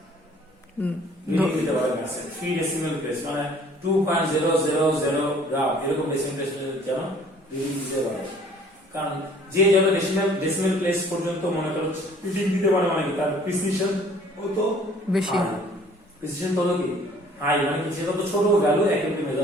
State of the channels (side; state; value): both; normal; correlation 0.55